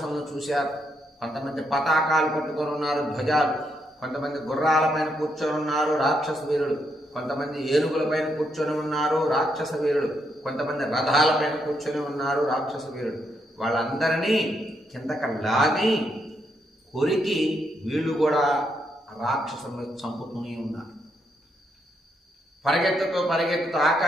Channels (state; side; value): normal; both; correlation 0.78